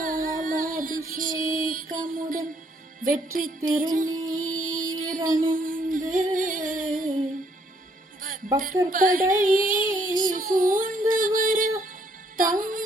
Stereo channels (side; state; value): both; normal; correlation 0.68